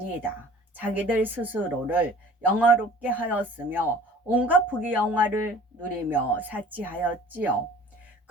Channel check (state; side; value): normal; both; correlation 0.48